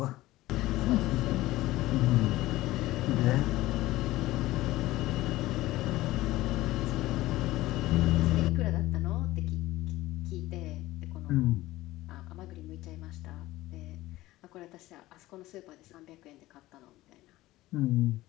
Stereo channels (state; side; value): quieter; right; 17.2 dB